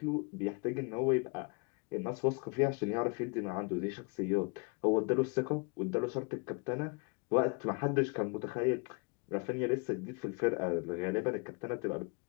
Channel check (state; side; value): quieter; right; 33.0 dB